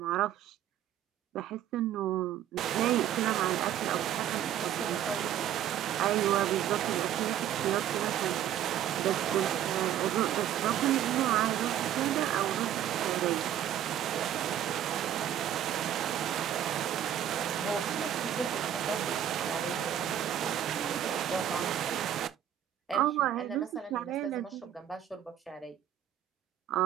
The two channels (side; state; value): left; quieter; 10.7 dB